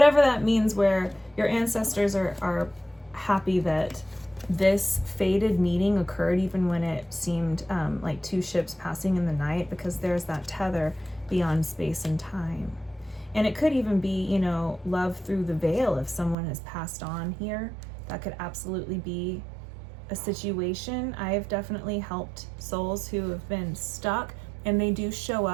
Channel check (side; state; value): left; drops out; at 16.4 s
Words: that means, where your ancestors are happy that this fated meeting occurred even when it seemed like two ships passing in the night, because there's that tether beyond space and time. And it could even be, you know, love through the veil. If someone has passed on here, that could absolutely be a situation. I have definitely helped souls who have been stuck, and they do show